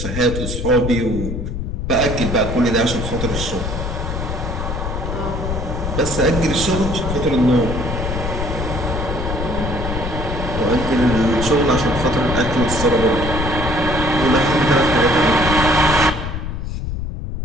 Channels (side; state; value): left; noise; rumble, 4 dB below the sound